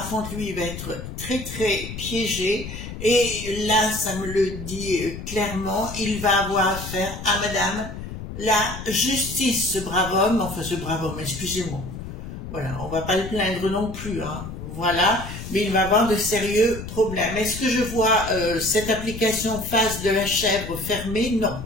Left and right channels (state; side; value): noise; left; rumble, 9 dB below the sound